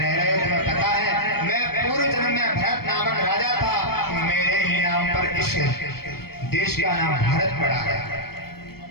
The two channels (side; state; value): right; late; 0.95 ms